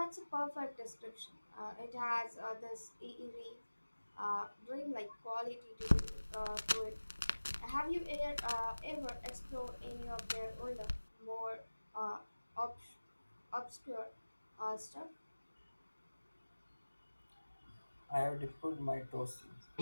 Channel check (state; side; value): inverted; both; correlation -1.00